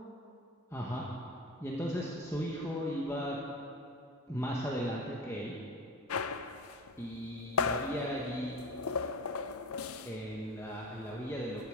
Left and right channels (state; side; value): normal; both; correlation 0.31